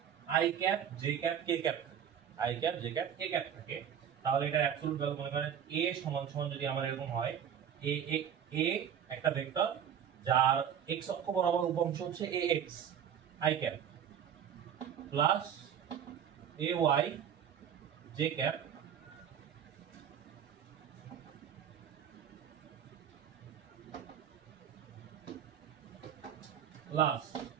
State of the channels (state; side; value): quieter; left; 8.7 dB